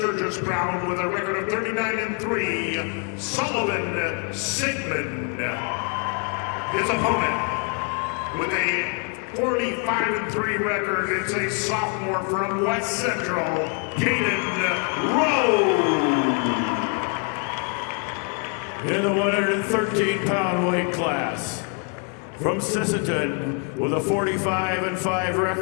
Brown with a record of 39-3, Sullivan Sigmund. His opponent with a 45-3 record, it's a sophomore from West Central, Caden Rowe. In the 113-pound weight class, from Sisseton with a 45-5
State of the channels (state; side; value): quieter; right; 37.0 dB